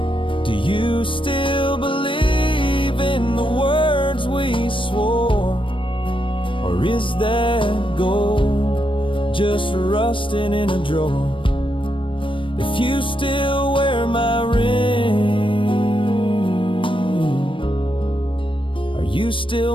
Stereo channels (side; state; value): right; late; 0.25 ms